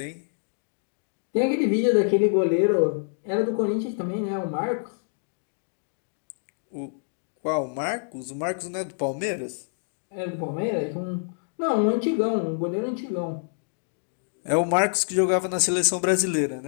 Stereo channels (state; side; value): silent; right; digital silence